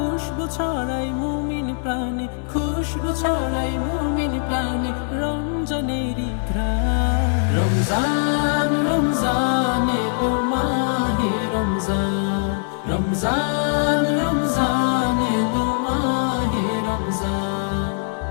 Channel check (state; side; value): silent; right; digital silence